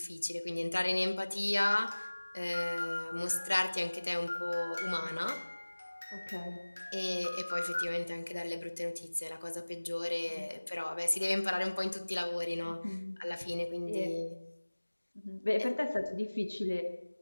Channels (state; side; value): inverted; both; correlation -1.00